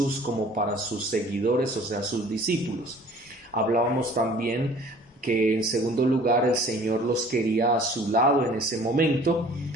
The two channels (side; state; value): both; normal; correlation 0.50